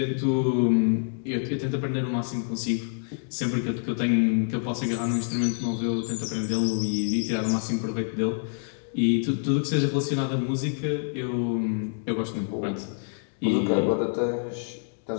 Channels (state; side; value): silent; right; digital silence